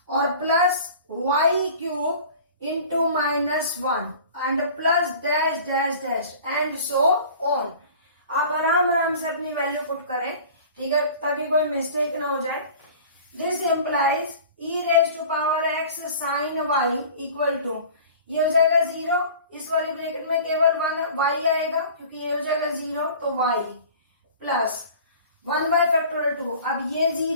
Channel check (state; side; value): inverted; both; correlation -0.43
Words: और plus y cube into -1 and plus dash dash dash and so on. आप आराम से अपनी वैल्यू पुट करें, ठीक है, ताकि कोई मिस्टेक ना हो जाए। This implies e raise to power x sine y equal to, ये हो जाएगा 0, इस वाली ब्रैकेट में केवल 1 वाई आएगा क्योंकि ये हो जाएगा 0, तो वाई प्लस 1 बाय फैक्टोरियल 2, अब ये